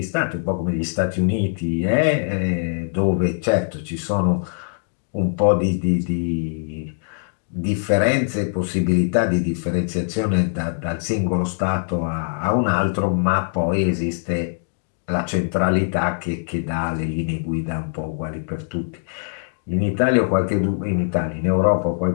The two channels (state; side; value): silent; right; digital silence